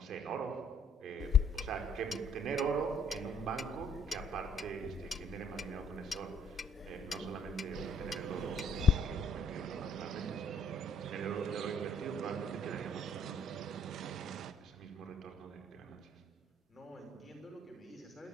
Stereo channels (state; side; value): normal; both; correlation 0.63